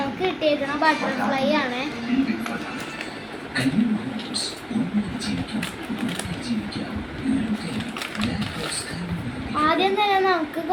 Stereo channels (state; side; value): identical; both; correlation 1.00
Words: കിട്ടിയേക്കുന്ന ബട്ടർഫ്ലൈ ആണ്. ആദ്യം തന്നെ നമുക്ക്